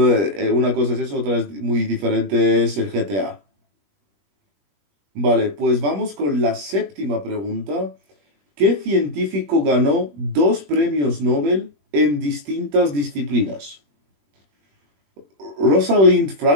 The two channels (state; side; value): late; left; 21 ms